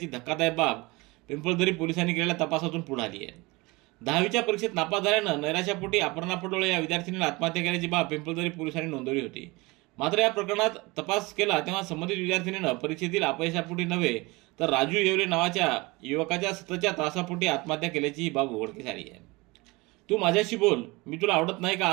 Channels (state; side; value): quieter; left; 23.8 dB